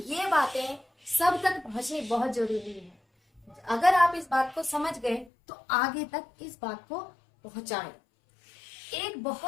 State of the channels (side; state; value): right; drops out; at 5.3 s